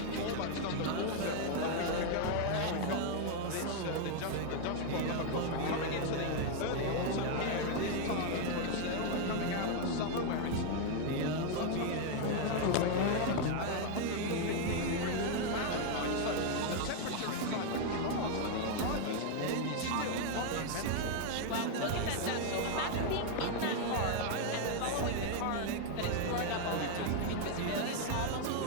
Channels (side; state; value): both; different; correlation 0.00